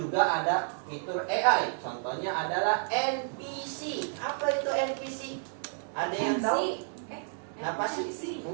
ada fitur AI. Contohnya adalah NPC. Apa itu NPC? Ada yang tahu? Apa sih?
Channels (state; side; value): silent; left; 57 dB below the other